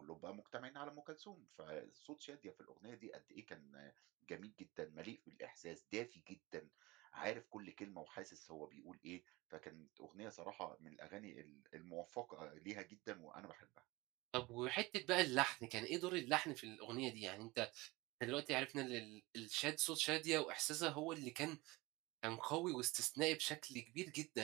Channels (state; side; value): quieter; left; 22.0 dB